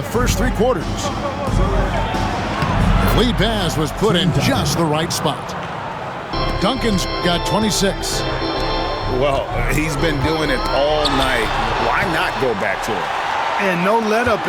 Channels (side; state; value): both; identical; correlation 1.00